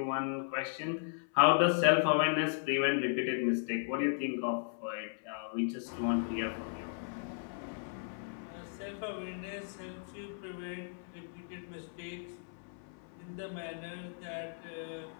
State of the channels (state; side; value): silent; right; 54 dB below the other